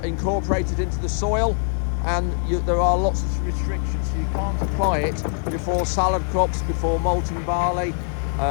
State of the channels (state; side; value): silent; right; 55 dB below the other